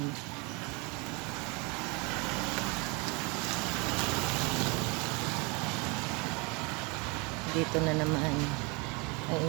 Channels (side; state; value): left; quieter; 28.9 dB